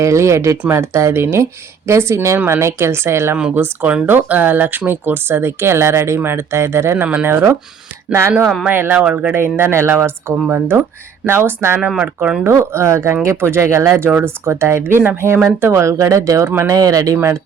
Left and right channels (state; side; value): quieter; left; 6.7 dB